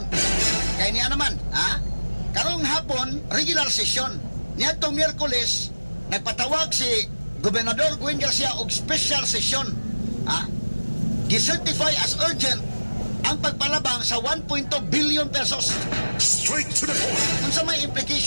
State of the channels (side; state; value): both; inverted; correlation -1.00